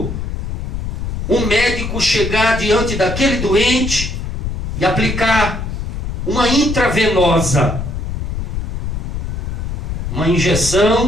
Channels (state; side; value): noise; left; rumble, 4 dB below the sound